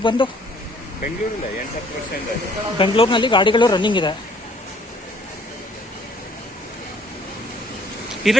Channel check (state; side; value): normal; both; correlation 0.61